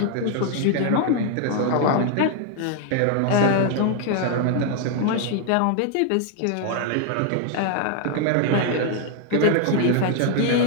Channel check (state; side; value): different; both; correlation 0.00